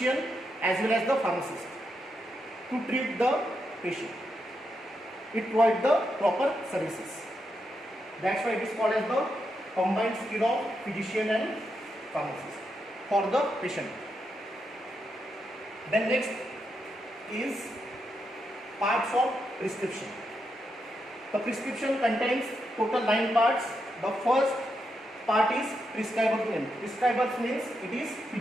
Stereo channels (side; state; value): both; normal; correlation 0.83